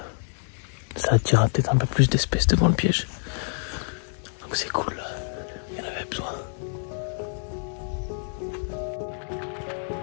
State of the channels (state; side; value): silent; right; 60 dB below the other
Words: ça attirera peut-être un peu plus d'espèces devant le piège. Donc c'est cool, il y en avait besoin.